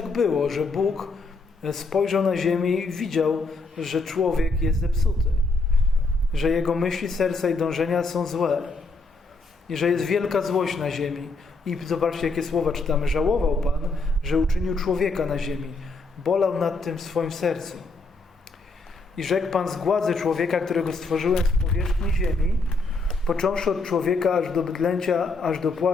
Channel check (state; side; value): quieter; right; 3.6 dB